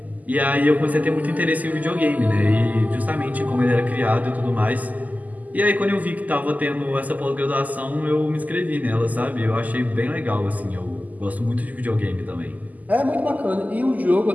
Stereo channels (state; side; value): late; left; 0.079 ms